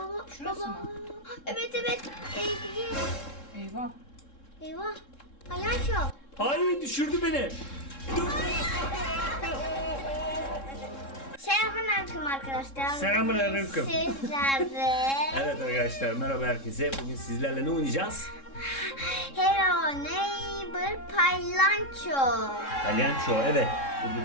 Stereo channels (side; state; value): right; late; 3.7 ms